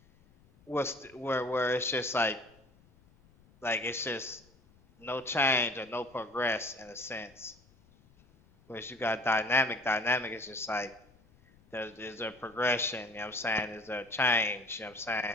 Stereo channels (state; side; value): noise; left; rumble, 29 dB below the sound